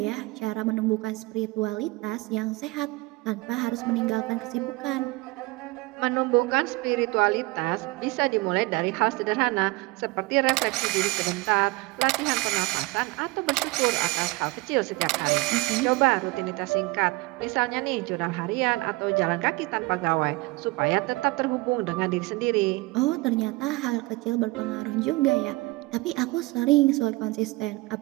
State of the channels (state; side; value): quieter; left; 23.0 dB